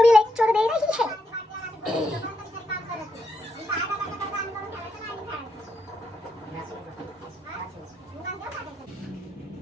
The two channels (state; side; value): normal; both; correlation 0.81